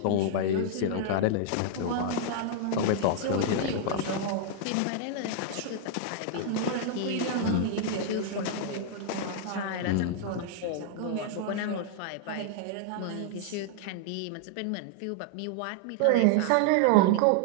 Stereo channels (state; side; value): different; both; correlation -0.01